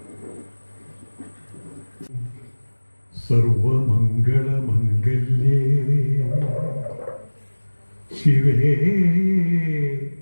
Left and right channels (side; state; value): both; inverted; correlation -1.00